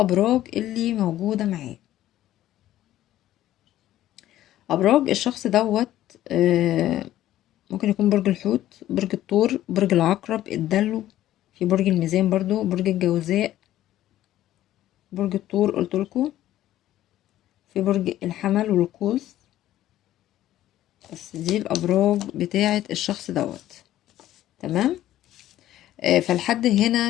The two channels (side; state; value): right; quieter; 13.5 dB